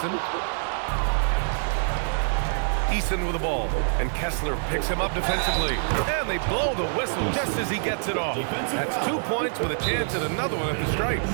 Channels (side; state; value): left; silent; 60 dB below the other